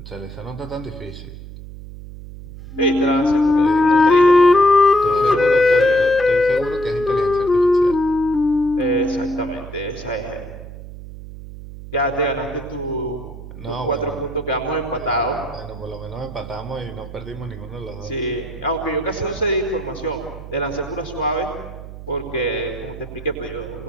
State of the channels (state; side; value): noise; right; hum, 13 dB below the sound